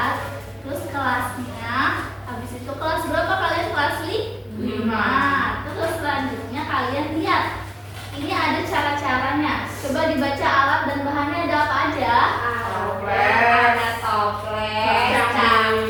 Terus kelasnya. Habis itu kelas berapa kalian? Kelas 5. Terus selanjutnya kalian lihat. Ini ada cara-caranya. Coba dibaca alat dan bahannya ada apa aja? Ada toples,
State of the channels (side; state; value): both; identical; correlation 1.00